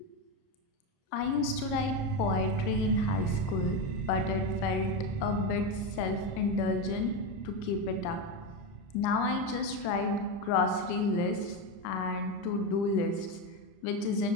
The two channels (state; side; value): late; right; 30 ms